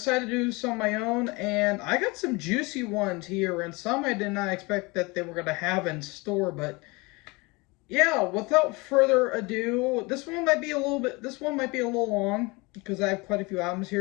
to do some of my own, and I got some juicy ones here, and some I did not expect that they were going to have in store, but yeah, without further ado, this one might be a little long because I have quite a few albums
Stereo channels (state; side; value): quieter; right; 25.7 dB